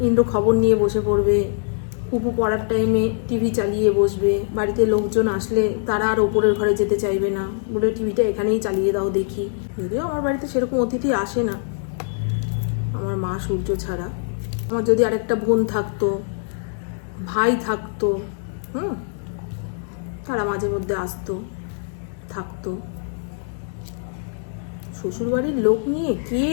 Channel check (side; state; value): right; silent; 62 dB below the other